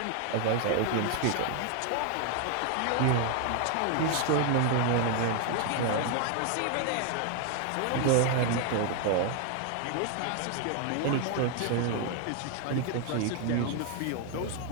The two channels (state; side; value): different; both; correlation 0.01